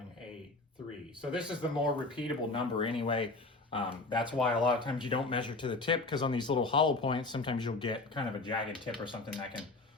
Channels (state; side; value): quieter; right; 3.3 dB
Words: So this is the more repeatable number anyway. That's why a lot of times you don't measure to the tip, because on these little hollow points, sometimes you'll get kind of a jagged tip or something that can